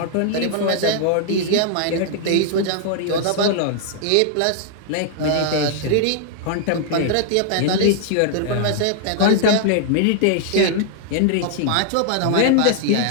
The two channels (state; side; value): different; both; correlation -0.01